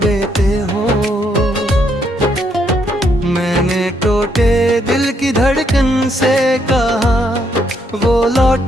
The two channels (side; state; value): both; normal; correlation 0.74